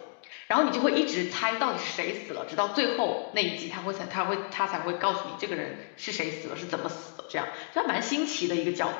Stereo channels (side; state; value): right; silent; 58 dB below the other